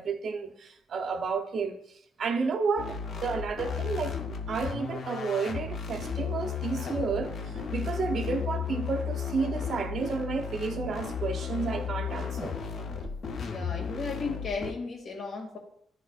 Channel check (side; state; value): both; normal; correlation 0.69